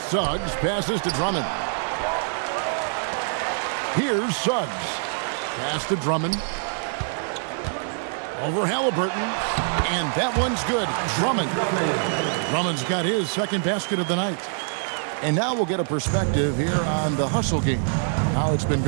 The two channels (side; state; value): left; silent; 62 dB below the other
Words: Suggs passes to Drummond. Here's Suggs. Pass to Drummond. Over Halliburton. And that one's good. Drummond. Drummond's got his second basket of the night. And now we'll get a perspective here on the hustle game. How it's been